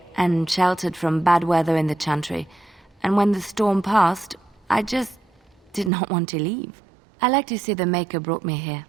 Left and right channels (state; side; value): drops out; left; at 5.9 s